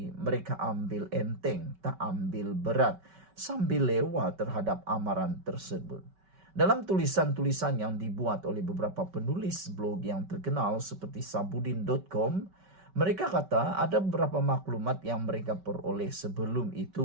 mereka ambil enteng, tak ambil berat, sambil lewat terhadap amaran tersebut. Dalam tulisan-tulisan yang dibuat oleh beberapa penulis blog yang terkenal seperti sabudin.com, mereka kata ada beberapa maklumat yang mereka peroleh sebelum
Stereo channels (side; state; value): left; late; 5.2 ms